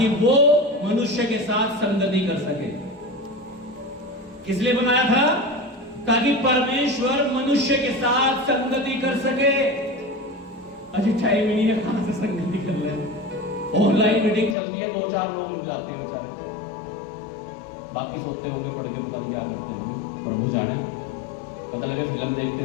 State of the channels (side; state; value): right; drops out; at 14.6 s